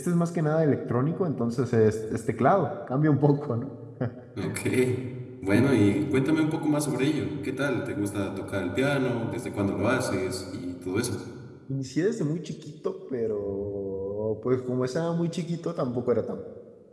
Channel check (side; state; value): both; identical; correlation 1.00